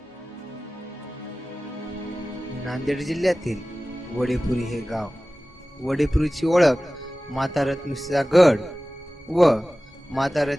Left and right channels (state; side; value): normal; both; correlation 0.97